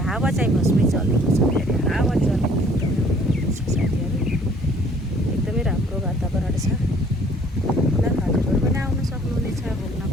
हावा चाहिँ बसमै चलेको छ, फेरि हावा चलेको एकदमै छ साथीहरू। एकदमै राम्रो वातावरण छ। ल हजुरहरू पनि आउनु सक्नुहुनेछ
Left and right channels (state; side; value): normal; both; correlation 0.57